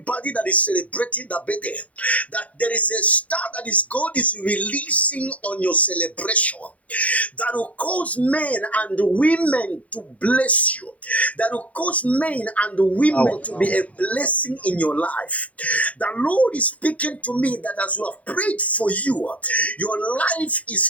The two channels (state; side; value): late; right; 0.068 ms